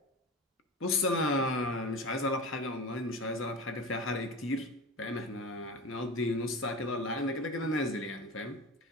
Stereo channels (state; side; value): normal; both; correlation 0.30